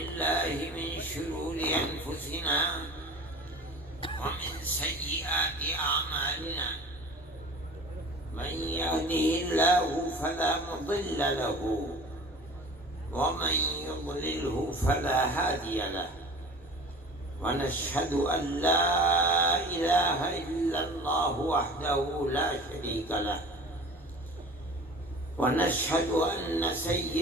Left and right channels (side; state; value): both; normal; correlation 0.40